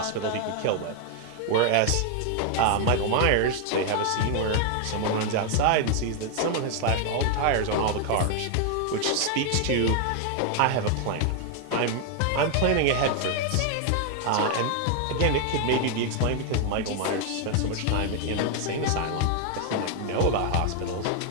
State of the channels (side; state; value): both; different; correlation 0.00